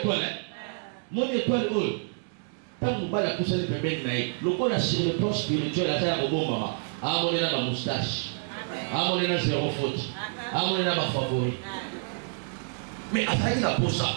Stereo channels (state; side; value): silent; left; 59 dB below the other